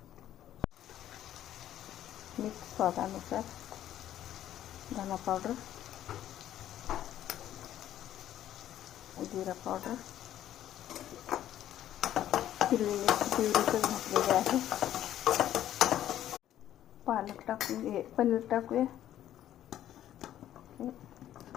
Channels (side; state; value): right; quieter; 12.0 dB